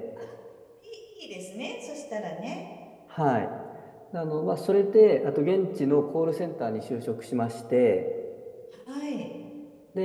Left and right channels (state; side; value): identical; both; correlation 1.00